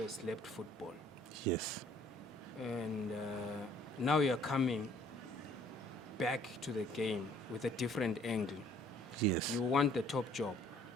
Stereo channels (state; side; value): normal; both; correlation 0.60